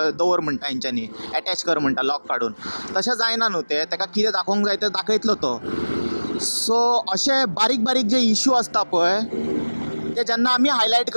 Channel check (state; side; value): inverted; both; correlation -1.00